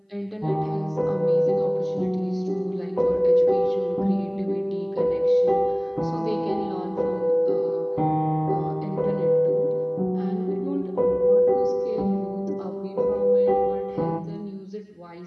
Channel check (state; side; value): identical; both; correlation 1.00